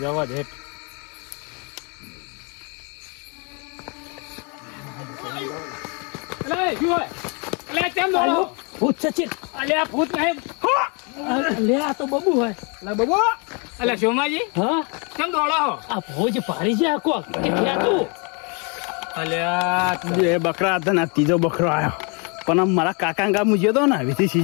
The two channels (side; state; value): right; quieter; 33.9 dB